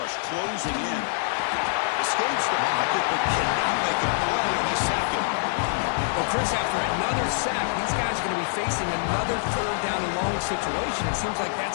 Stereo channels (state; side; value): silent; right; digital silence